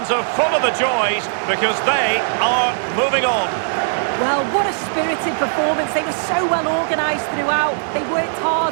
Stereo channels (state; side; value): silent; left; digital silence